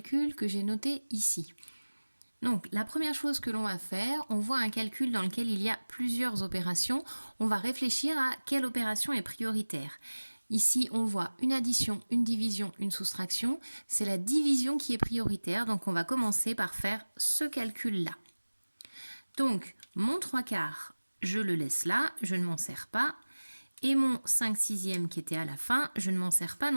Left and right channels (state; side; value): inverted; both; correlation -1.00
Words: que j'ai noté ici. Donc la première chose que l'on va faire, on voit un calcul dans lequel il y a plusieurs opérations. On va réfléchir à quelle opération est prioritaire. Ici, on voit une addition, une division, une soustraction. C'est la division qui est prioritaire, donc on va commencer par faire ce calcul-là. Donc mon 3/4, je le laisse là, je ne m'en sers pas. Et mon 5/6 qui était à la fin, je ne m'en sers pas